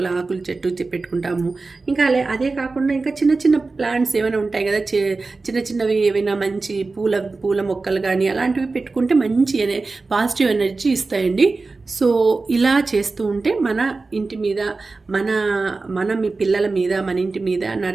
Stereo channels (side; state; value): left; quieter; 3.8 dB